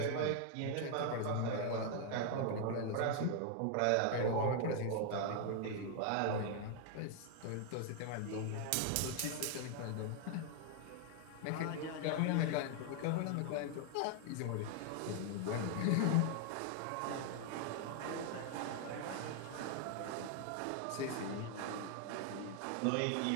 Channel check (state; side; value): different; both; correlation 0.00